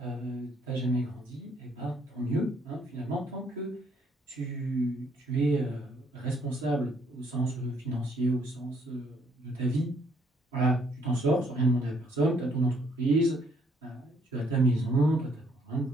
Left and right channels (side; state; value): both; normal; correlation 0.66